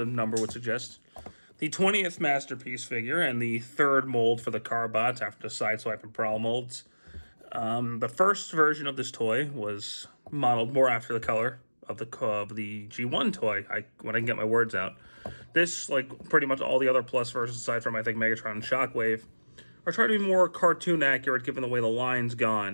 number would suggest, the 20th masterpiece figure and the third mold for the Carbots after the Sideswipe and Prowl molds. The first version of this toy was modeled more after the color of the G1 toy. When I can get my words out. This, like pretty much all the other Plus versions, aside from I think Megatron and Shockwave, are trying to be more cartoon accurate given the way the line's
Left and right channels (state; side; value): inverted; both; correlation -1.00